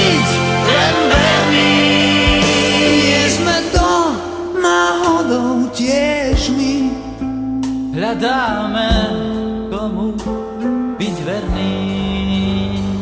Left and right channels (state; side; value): identical; both; correlation 1.00